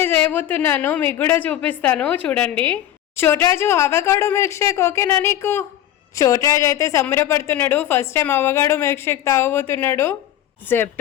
చేయబోతున్నాను, మీకు కూడా చూపిస్తాను చూడండి. చోట్రాజు అవకాడో మిల్క్ షేక్ ఓకేనా నీకు? చోట్రాజు అయితే సంబరపడుతున్నాడు, first time avocado milk shake తాగబోతున్నాడు.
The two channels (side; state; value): right; quieter; 12.3 dB